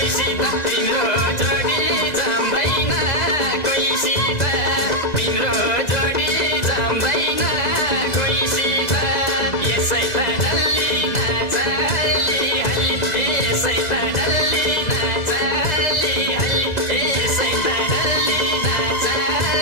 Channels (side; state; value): right; late; 2.0 ms